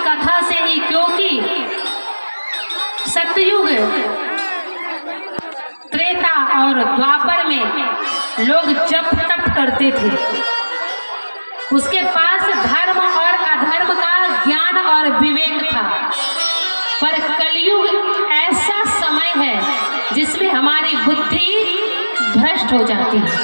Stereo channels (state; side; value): inverted; both; correlation -1.00